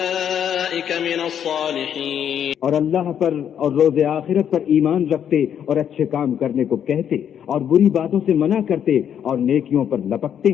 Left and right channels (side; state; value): right; quieter; 9.0 dB